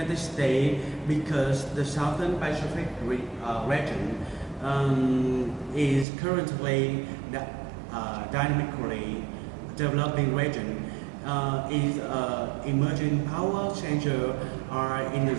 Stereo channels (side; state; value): left; drops out; at 6.1 s